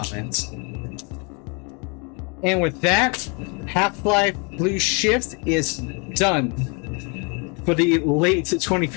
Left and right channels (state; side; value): quieter; right; 33.4 dB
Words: And with that, Half-Life Blue Shift is done for the late